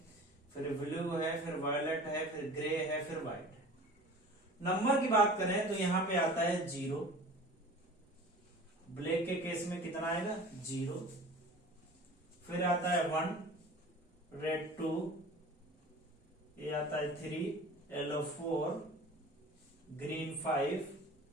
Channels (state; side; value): normal; both; correlation 0.41